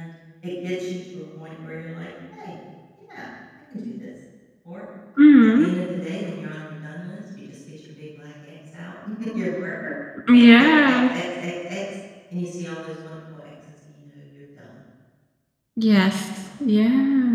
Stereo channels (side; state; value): both; identical; correlation 1.00